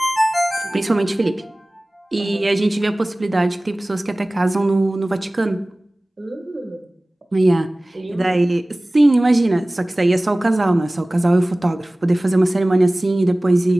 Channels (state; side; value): normal; both; correlation 0.98